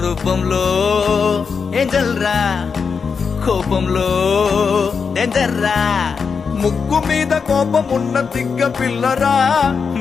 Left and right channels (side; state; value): right; quieter; 5.7 dB